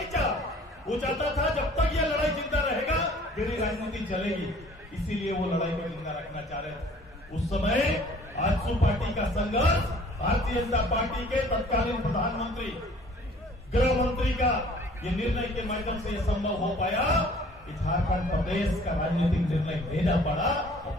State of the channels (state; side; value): normal; both; correlation 0.53